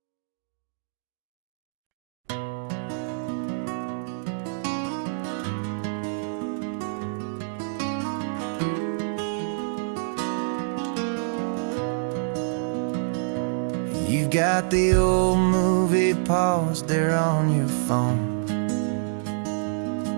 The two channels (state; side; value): silent; left; digital silence